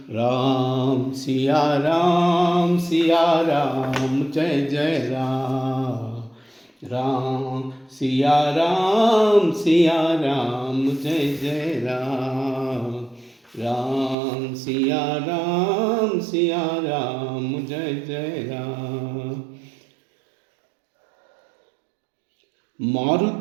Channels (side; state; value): left; drops out; at 14.2 s